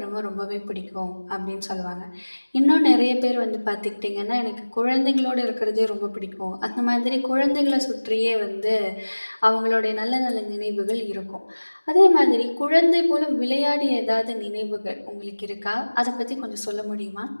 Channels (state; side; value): inverted; both; correlation -1.00